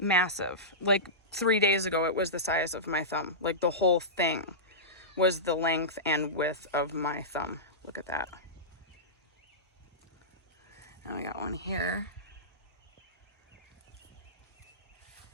Like 3 days ago, it was the size of my thumb. Like the whole thing was the length and width of my thumb. Look at that. Now we got one here.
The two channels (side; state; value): both; normal; correlation -0.17